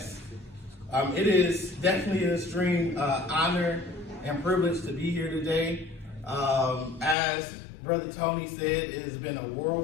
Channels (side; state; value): right; drops out; at 7.2 s